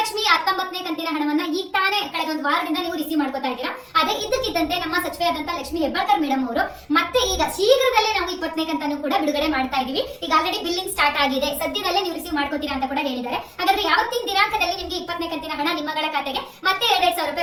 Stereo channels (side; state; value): both; identical; correlation 1.00